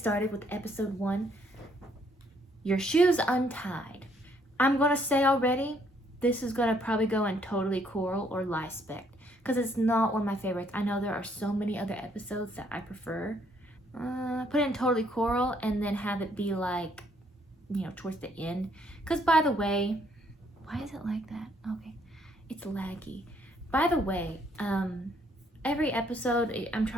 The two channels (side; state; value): both; normal; correlation 0.68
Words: with episode 1. Your Shoes Untied. I'm gonna say already, this is gonna probably go in totally coral or Lispect because it's not one of my favorites. I know there are so many other episodes that I prefer. Put it in totally coral and then have it be like, you know, towards the end. Because by the way, why is it like that? Okay, it's laggy. By the way, every episode I'm